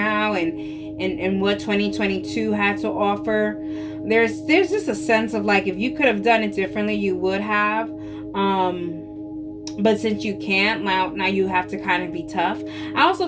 and what 2022 had to offer. There's just a sense of like, if you could have done it differently, you would have. But since you can't, now you have to kind of be tough. I also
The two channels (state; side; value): identical; both; correlation 1.00